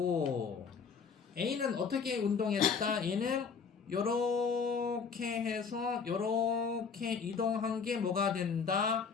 A는 어떻게 운동했다? 얘는 요렇게 해서 요렇게 이동한 게 뭐가 된다?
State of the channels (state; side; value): quieter; right; 5.8 dB